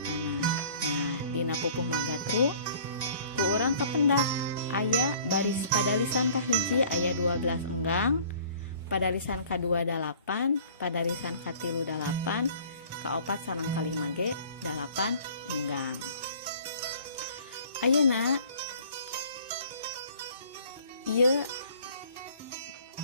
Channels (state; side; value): inverted; both; correlation -0.50